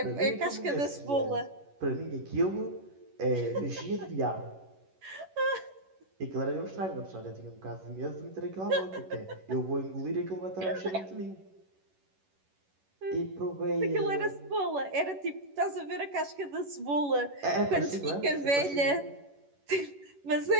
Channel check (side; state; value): left; late; 11 ms